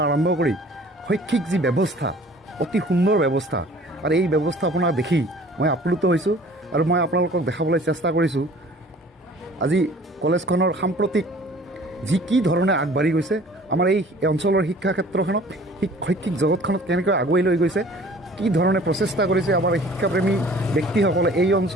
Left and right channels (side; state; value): both; normal; correlation 0.50